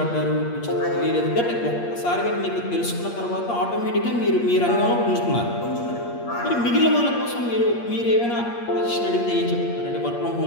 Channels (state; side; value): late; right; 8.5 ms